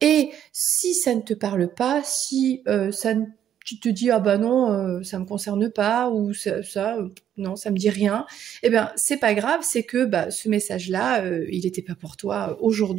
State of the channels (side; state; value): left; quieter; 10.0 dB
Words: Et si ça ne te parle pas, si ça ne tu te dis ah bah non ça me concerne pas ou non ça me dit rien, eh bien c'est pas grave, c'est que bah, ce message là il n'était pas pour toi